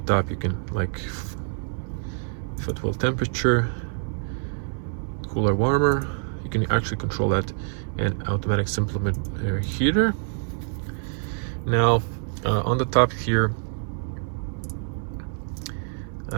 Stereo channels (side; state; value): left; silent; 59 dB below the other